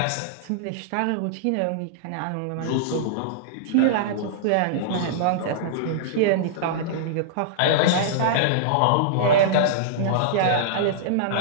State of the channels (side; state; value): both; different; correlation -0.02